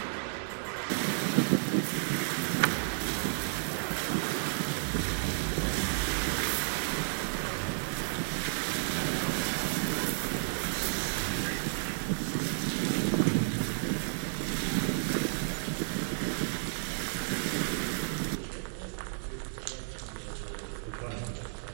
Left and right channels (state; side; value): silent; left; digital silence